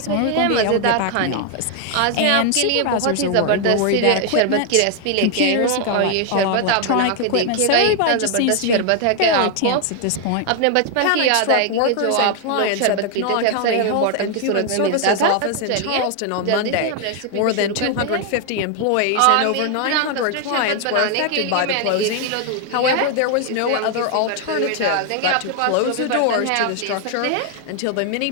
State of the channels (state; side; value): different; both; correlation 0.00